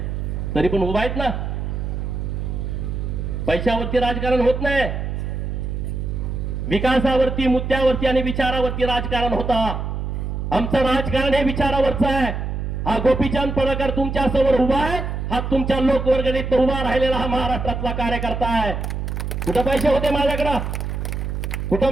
तरी पण उभा आहेत ना. पैशावरती राजकारण होत नाही. विकासावरती, मुद्द्यावरती आणि विचारावरती राजकारण होता. आमचं राजकारण हे विचारावरचं आहे. हा गोपीचंद पडळकर तुमच्या समोर उभा आहे. हा तुमच्या लोकवर्गणीत उभा राहिलेला हा महाराष्ट्रातला कार्यकर्ता आहे. कुठं पैसे होते माझ्याकडं?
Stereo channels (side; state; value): right; noise; hum, 3 dB below the sound